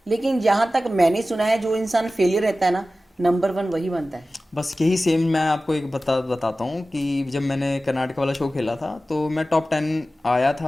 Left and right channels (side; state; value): both; normal; correlation 0.95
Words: लेकिन जहां तक मैंने सुना है जो इंसान फेलियर रहता है ना, नंबर 1 वही बनता है। बस यही सेम मैं आपको एक बताता हूँ कि जब मैंने कर्नाटक वाला शो खेला था तो मैं टॉप 10 आया